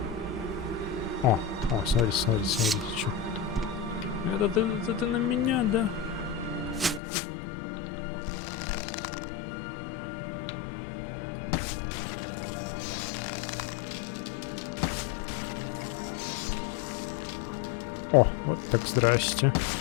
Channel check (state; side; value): drops out; right; at 7.0 s